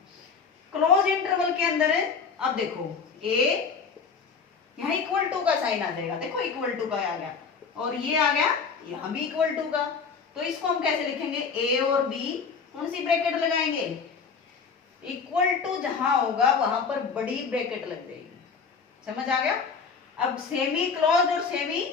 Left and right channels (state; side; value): quieter; right; 5.6 dB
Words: क्लोज इंटरवल के अंदर अब देखो a यहाँ इक्वल टू का साइन आ जाएगा, देखो इक्वल टू का आ गया और ये आ गया यहाँ भी इक्वल टू का, तो इसको हम कैसे लिखेंगे, a और b कौन सी ब्रैकेट लगाएंगे, इक्वल टू जहां होगा वहां पर बड़ी ब्रैकेट लग जाएगी, समझ आ गया। अब सेमी क्लोज और सेमी